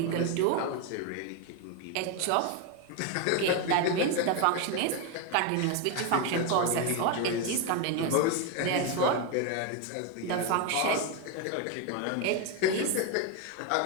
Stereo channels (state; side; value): different; both; correlation 0.02